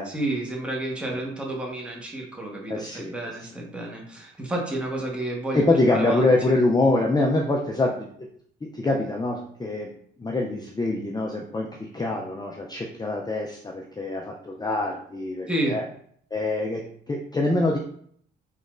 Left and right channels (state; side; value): normal; both; correlation 0.71